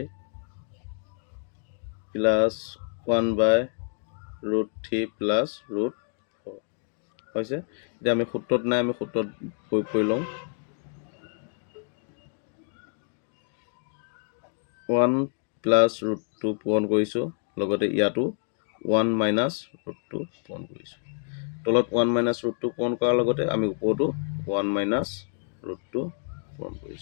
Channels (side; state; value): right; silent; 55 dB below the other